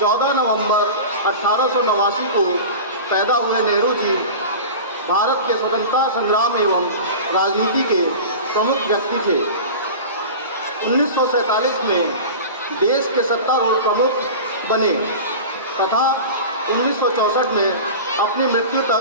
नवंबर 1889 को पैदा हुए नेहरू जी भारत के स्वतंत्रता संग्राम एवं राजनीति के प्रमुख व्यक्ति थे। 1947 में देश के सत्तारूढ़ प्रमुख बने तथा 1964 में अपनी मृत्यु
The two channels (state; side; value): inverted; both; correlation -0.32